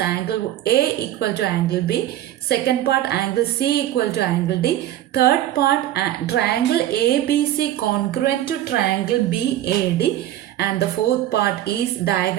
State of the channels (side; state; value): left; quieter; 13.0 dB